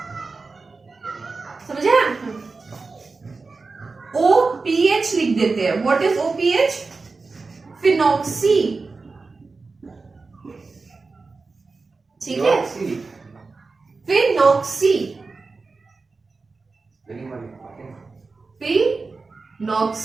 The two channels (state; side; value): quieter; left; 4.1 dB